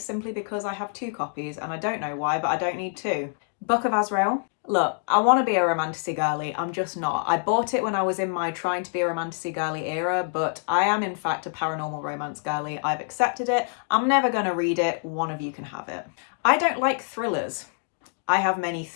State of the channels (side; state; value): right; silent; 61 dB below the other